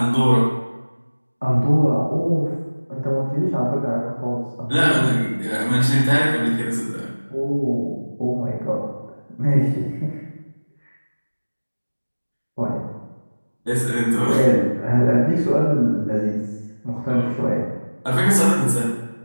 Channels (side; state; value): both; inverted; correlation -1.00